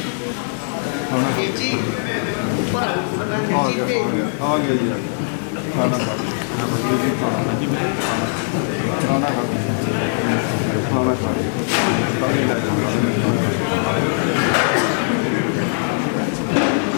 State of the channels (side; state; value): right; silent; 66 dB below the other